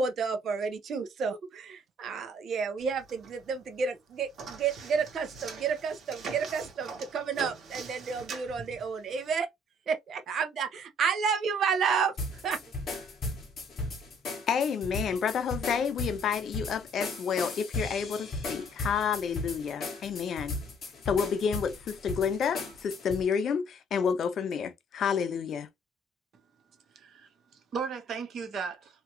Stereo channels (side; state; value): both; normal; correlation 0.60